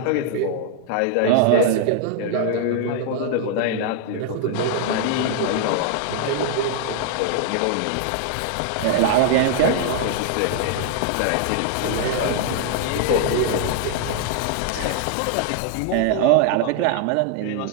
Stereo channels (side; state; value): both; different; correlation 0.00